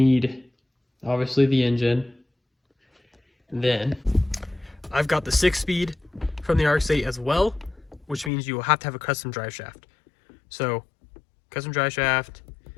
obviously, the engine. Then, I've got the 6-speed from the Rx8 as well, which means you will have to have a custom drive shaft. So, custom drive shaft,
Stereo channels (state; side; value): drops out; right; at 8.3 s